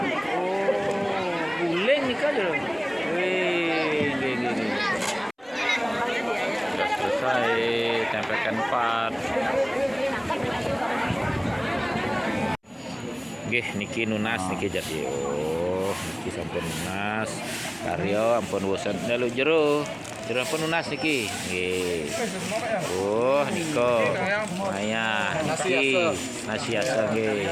Oh, guling nih kan jero. Wih, nggih. Sudah selesai tempelkan 4. Nggih niki nunas niki jadi. Oh, niki sampun nunas. Karyo ampun bosan dalu jero ampun nunas niki. Nggih. Oh, niko. Maya niki nasi asa nggih.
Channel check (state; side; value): identical; both; correlation 1.00